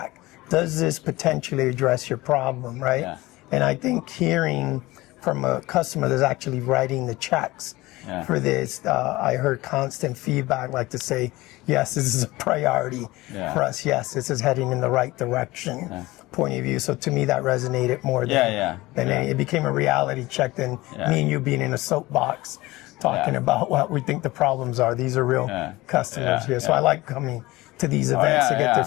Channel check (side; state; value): right; quieter; 19.7 dB